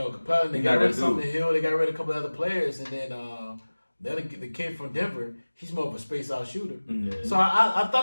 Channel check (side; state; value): both; inverted; correlation -1.00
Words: Capella, they got rid of Sumner Hill, they got rid of a couple of other players, and then the kid from Denver, he's more of a space-out shooter. Mm-hmm. So I